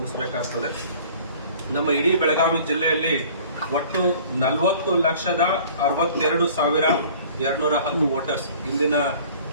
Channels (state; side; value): inverted; both; correlation -0.49